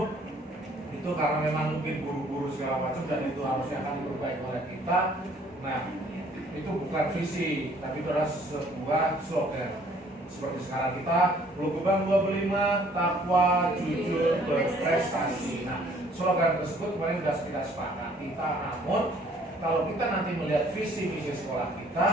itu karena memang mungkin buru-buru segala macam dan itu harusnya akan diperbaiki oleh kita. Nah itu bukan visi tapi itu adalah sebuah slogan. Seperti sekarang kita Lugebang 25 takwa jujur berprestasi. Nah slogan tersebut kemarin sudah kita sepakati. Namun kalau kita nanti melihat visi misi sekolah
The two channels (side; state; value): both; normal; correlation 0.59